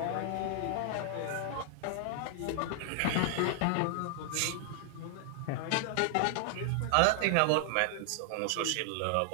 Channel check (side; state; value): both; different; correlation 0.00